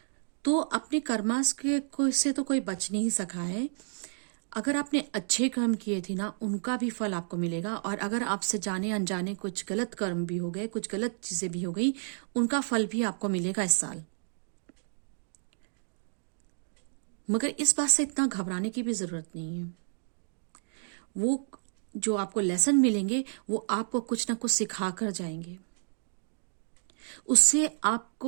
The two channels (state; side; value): silent; left; digital silence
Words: तो अपने कर्मास के को से तो कोई बच नहीं सका है। अगर आपने अच्छे कर्म किए थे ना, उनका भी फल आपको मिलेगा, और अगर आपसे जाने अनजाने कुछ गलत कर्म भी हो गए, कुछ गलत चीजें भी हो गई, उनका फल भी आपको मिलेगा इस साल। मगर इस बात से इतना घबराने की भी जरूरत नहीं है। वो जो आपको लेसन मिलेंगे वो आपको कुछ ना कुछ सिखा कर जाएंगे। उससे